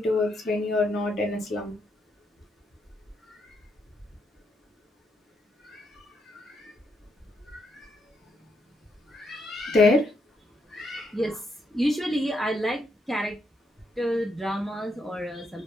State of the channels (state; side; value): normal; both; correlation 0.78